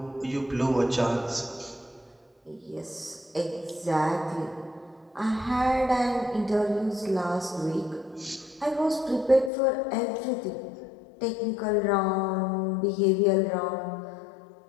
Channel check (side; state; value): right; drops out; at 9.5 s